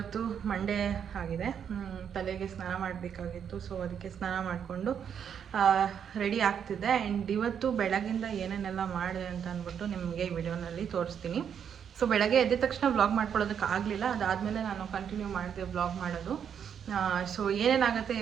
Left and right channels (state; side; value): quieter; left; 8.1 dB